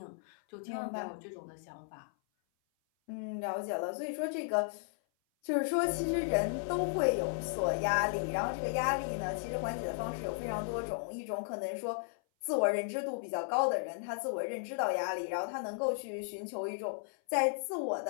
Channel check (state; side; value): silent; right; 54 dB below the other